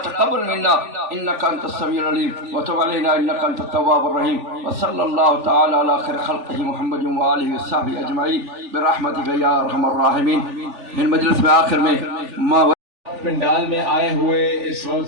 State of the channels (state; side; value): late; left; 3.4 ms